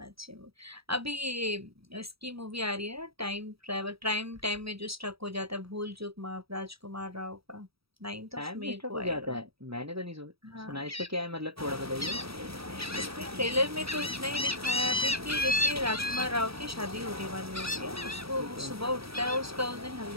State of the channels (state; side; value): late; left; 0.77 ms